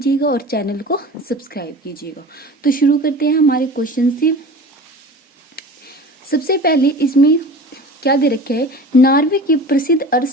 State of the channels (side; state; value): both; normal; correlation 0.37